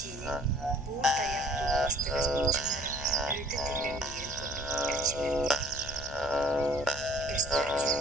buğur dayak tuğbastırız bulçunları öğüte tüllen mirin kurduk elçilerdi. Göster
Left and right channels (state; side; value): noise; left; hum, 14 dB below the sound